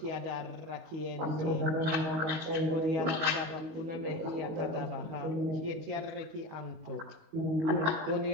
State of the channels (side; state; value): left; late; 19 ms